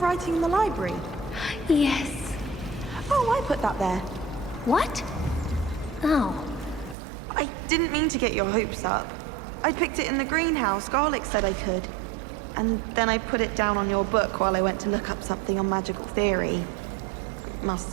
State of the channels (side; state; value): left; drops out; at 7.0 s